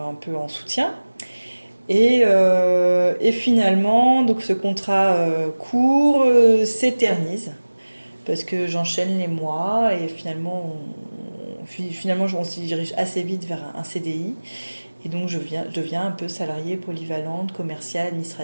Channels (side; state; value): both; inverted; correlation -1.00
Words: peu en soutien. Et finalement, donc ce contrat court s'éternise parce que j'enchaîne les mois et finalement on se dirige assez vite vers un CDI. Et donc je deviens un peu salariée polyvalente, commerciale,